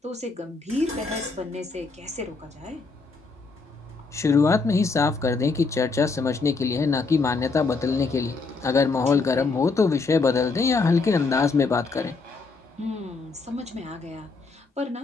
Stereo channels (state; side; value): quieter; right; 4.1 dB